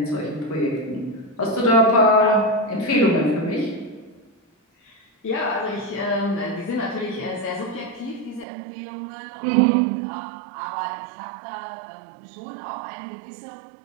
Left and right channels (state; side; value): drops out; left; at 8.5 s